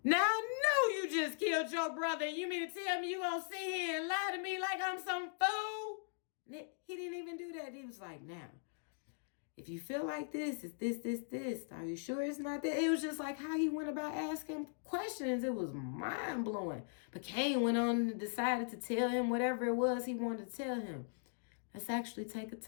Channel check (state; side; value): silent; right; digital silence